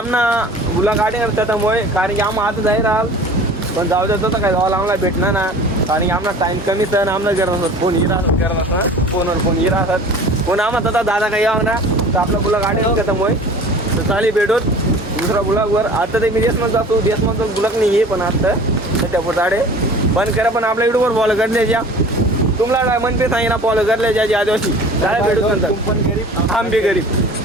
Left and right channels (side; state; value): both; normal; correlation 0.43